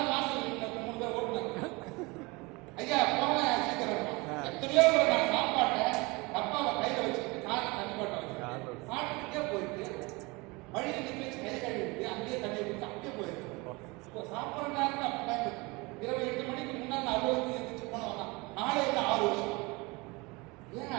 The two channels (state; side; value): quieter; left; 25.5 dB